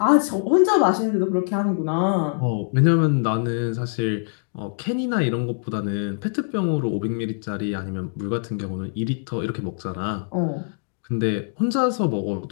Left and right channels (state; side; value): silent; right; digital silence